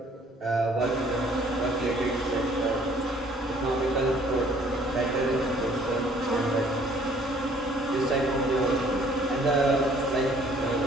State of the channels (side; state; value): both; normal; correlation 0.58